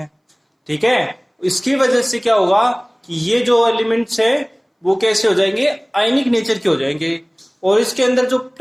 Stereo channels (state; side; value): identical; both; correlation 1.00